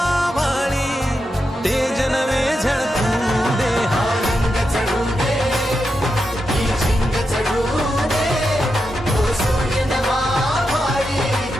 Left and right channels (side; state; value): both; normal; correlation 0.87